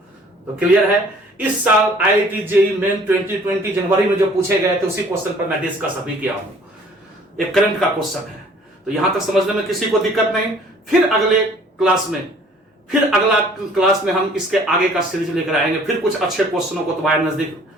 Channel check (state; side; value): normal; both; correlation 0.54